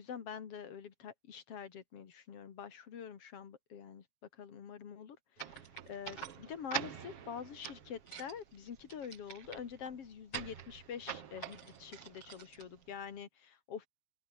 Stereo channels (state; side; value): late; right; 7.4 ms